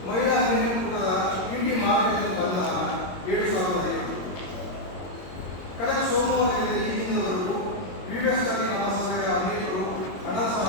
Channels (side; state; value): right; late; 22 ms